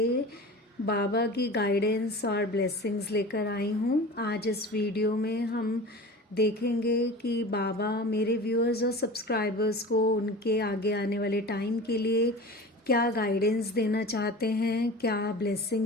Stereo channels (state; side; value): normal; both; correlation 0.36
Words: बाबा की गाइडेंस और ब्लेसिंग्स लेकर आई हूँ। आज इस वीडियो में हम देखेंगे कि बाबा मेरे व्यूअर्स और सब्सक्राइबर्स को उनके आगे आने वाले टाइम के लिए क्या गाइडेंस देना चाहते हैं, क्या